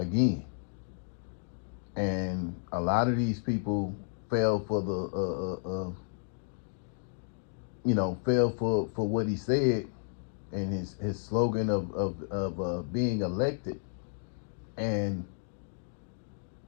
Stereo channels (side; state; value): right; silent; digital silence